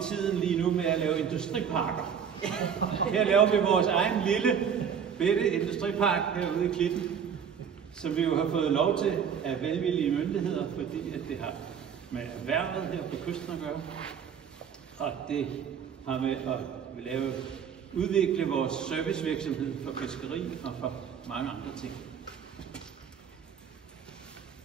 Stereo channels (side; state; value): left; quieter; 7.5 dB